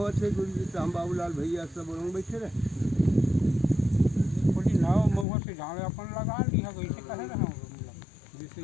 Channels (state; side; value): drops out; right; at 5.2 s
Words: गुरुजी तो हम बाबूलाल भैया सब लोग बैठे रहे पूरी नाव महुआ से झाड़े अपन लगा ली है वैसे कहे रहे हम जैसे